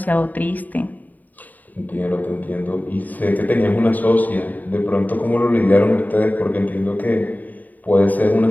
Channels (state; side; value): late; right; 0.083 ms